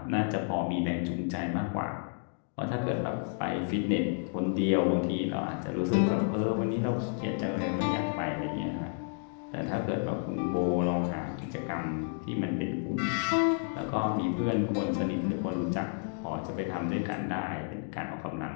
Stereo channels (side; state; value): right; silent; 57 dB below the other